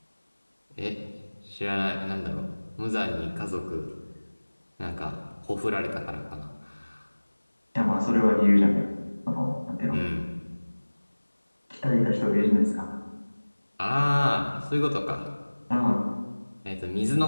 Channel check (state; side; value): inverted; both; correlation -1.00